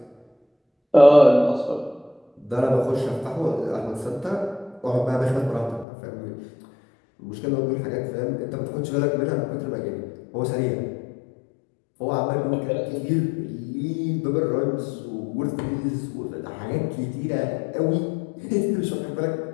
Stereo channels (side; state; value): right; drops out; at 5.9 s